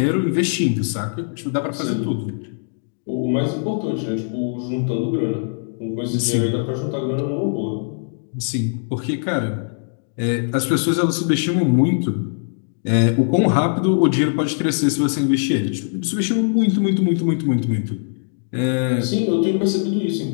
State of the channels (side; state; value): right; silent; digital silence